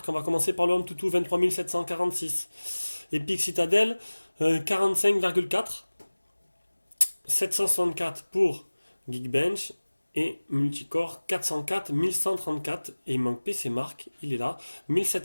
On va commencer par le Antutu 23746. Epic Citadel 45,4. 764 pour Geekbench et Multicore 404 1134 et il manque PC Mark, il est là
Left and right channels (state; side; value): inverted; both; correlation -1.00